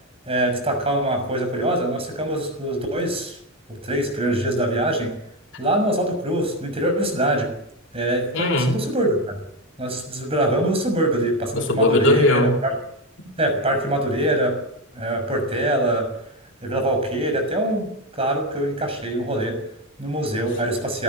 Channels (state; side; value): normal; both; correlation 0.11